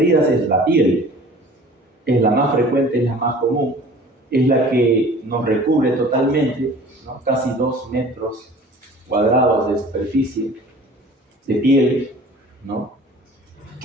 es la piel. Es la más frecuente, es la más común, es la que nos recubre totalmente, ¿no? Casi 2 metros cuadrados de superficie de piel, ¿no?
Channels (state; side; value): normal; both; correlation 0.46